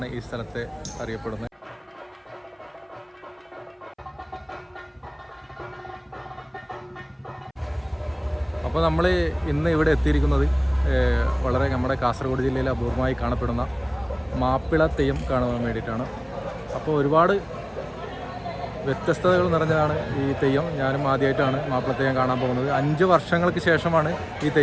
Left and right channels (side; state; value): both; identical; correlation 1.00